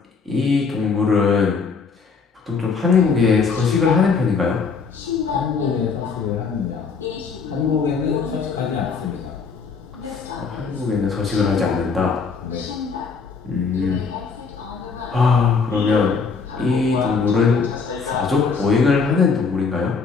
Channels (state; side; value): quieter; right; 5.1 dB